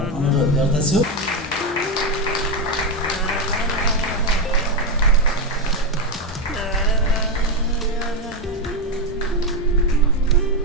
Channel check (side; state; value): both; normal; correlation 0.08